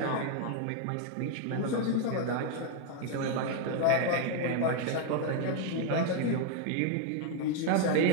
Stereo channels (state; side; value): different; both; correlation 0.01